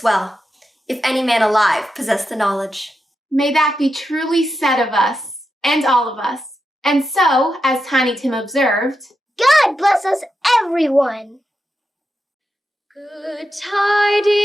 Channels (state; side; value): normal; both; correlation 0.87